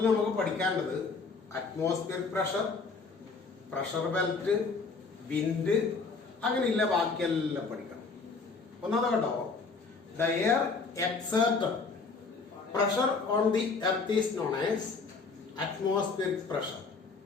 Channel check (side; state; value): right; quieter; 4.4 dB